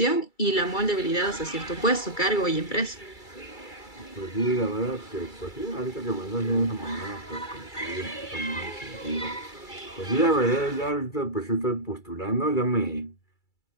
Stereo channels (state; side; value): late; right; 2.3 ms